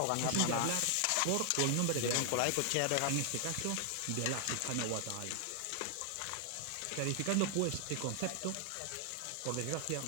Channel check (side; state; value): both; different; correlation 0.00